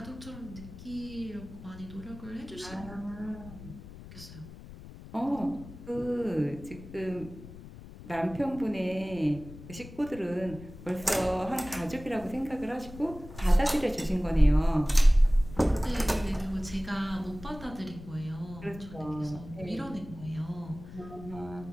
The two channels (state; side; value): noise; left; rumble, 15 dB below the sound